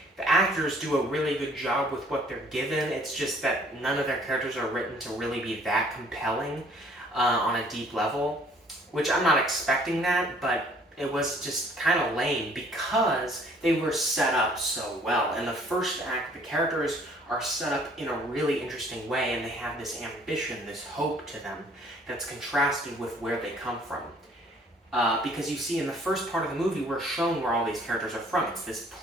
The actors do a really good job with what they're given. It's just that none of their characters are written to really be that compelling on a deep level, which I'm not expecting that, but it was just kind of lame because they were set up so well. In the first act, the characters are set up in a really interesting way, and they have this ambition, this hope to them that's contrasted with where they come from. Because you see, in the first part of the movie, we're shown where all these characters are from. It's this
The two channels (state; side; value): normal; both; correlation 0.58